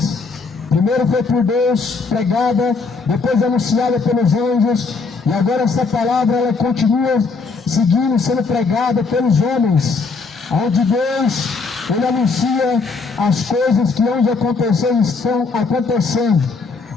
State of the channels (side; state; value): right; quieter; 4.4 dB